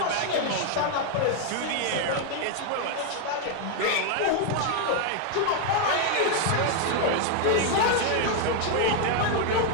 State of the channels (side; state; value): both; different; correlation 0.00